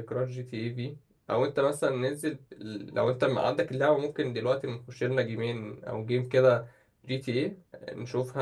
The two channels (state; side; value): identical; both; correlation 1.00